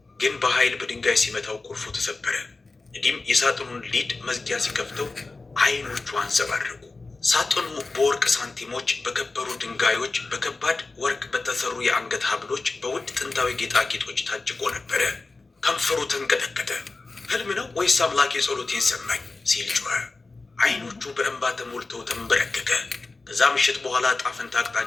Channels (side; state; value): right; quieter; 3.6 dB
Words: ግን በኃይል በድንጋይ ሲመታው ቁልፉ ተሰበረ። ነዲም የሳጥኑን ሊድ መዝጊያ ሲከፍተው አይኖቹ አንጸባረቁ። ሳጥኑ በወርቅ ሳንቲሞች፣ በከበሩ ድንጋዮች፣ በከባድ ወርቅ በተሰሩ የአንገት ሀብሎች፣ በውድ ጥንታዊ ጌጣጌጦች ታጭቆ ነበረ። ከንፈሩ ተንቀጠቀጠ። ህልም ነው ወይስ አምላክ የጸሎቴን ሰማኝ ሲል ጮኸ። አይኖቹ በእንባ ተሞልተው ተንበረከከ። ከዛ ምሽት በኋላ ጣፈንታ